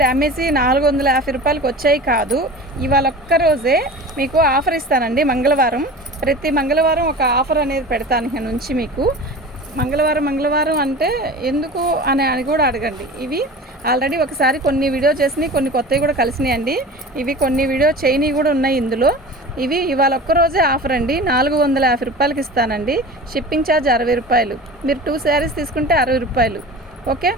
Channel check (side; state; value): both; normal; correlation 0.36